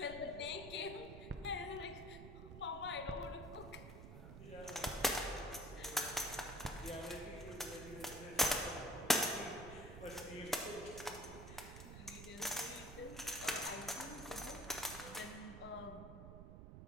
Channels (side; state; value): right; noise; rumble, 11 dB below the sound